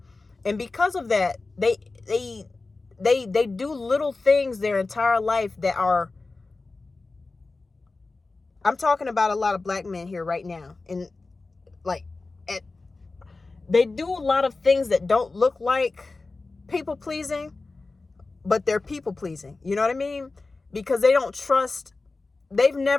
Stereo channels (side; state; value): right; quieter; 3.6 dB